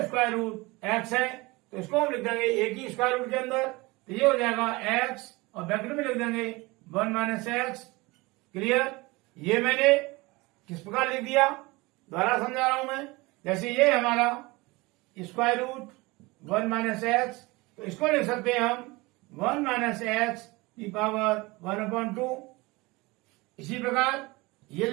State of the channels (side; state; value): left; quieter; 23.2 dB